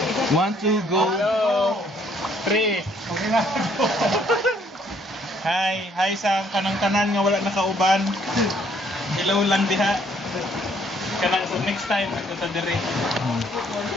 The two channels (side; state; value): both; normal; correlation 0.65